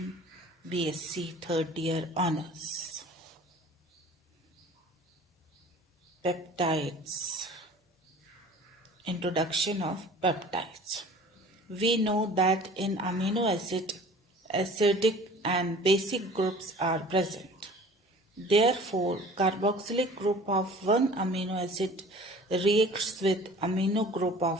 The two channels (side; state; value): both; normal; correlation 0.46